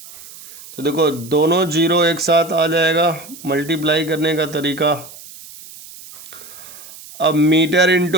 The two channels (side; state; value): right; noise; hiss, 18 dB below the sound